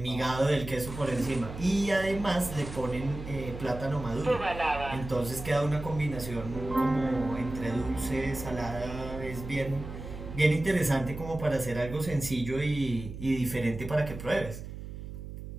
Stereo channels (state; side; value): noise; right; hum, 10 dB below the sound